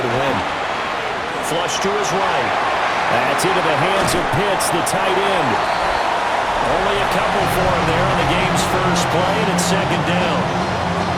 to win. Flush to his right. That's into the hands of Pitts, the tight end. Only a couple for him there on the game's first play, and it's second down.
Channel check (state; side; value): identical; both; correlation 1.00